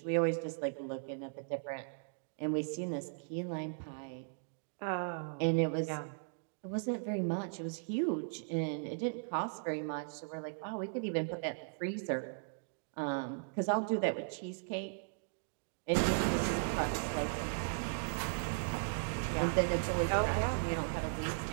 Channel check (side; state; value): left; silent; digital silence